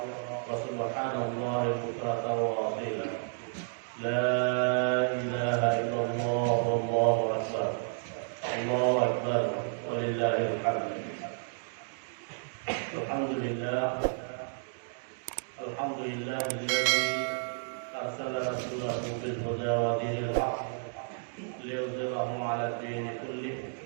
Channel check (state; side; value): silent; left; digital silence